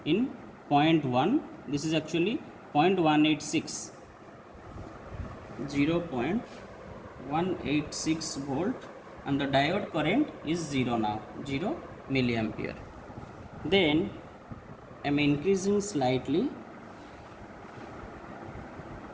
in 0.1. This is actually 0.186, 0.186 volt, and the diode current is 0 now, 0 milliampere. Then I am increasing slightly,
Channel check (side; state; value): both; identical; correlation 1.00